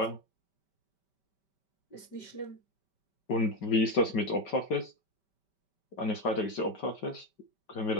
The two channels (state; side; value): late; right; 5.2 ms